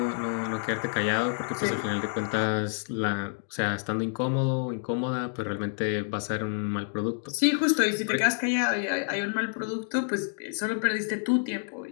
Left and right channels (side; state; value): right; silent; 59 dB below the other